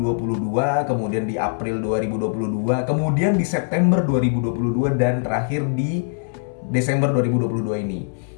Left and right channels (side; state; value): right; silent; 64 dB below the other